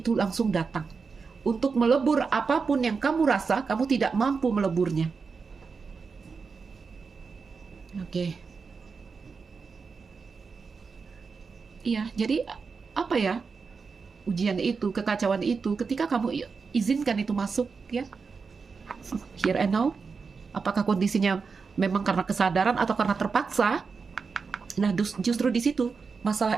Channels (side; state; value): left; quieter; 5.1 dB